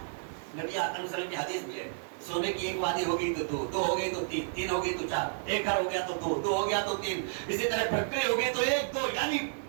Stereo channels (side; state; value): left; silent; digital silence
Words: نبی اکرم صلی اللہ علیہ وسلم کی حدیث بھی ہے, سونے کی ایک وادی ہوگی تو دو, دو ہوگی تو تین, تین ہوگی تو چار, ایک گھر ہو گیا تو دو, دو ہو گیا تو تین, اسی طرح فیکٹری ہو گئی تو ایک دو. یعنی